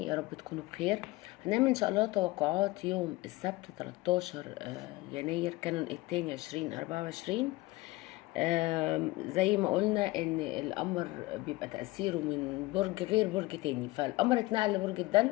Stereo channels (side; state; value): right; quieter; 20.4 dB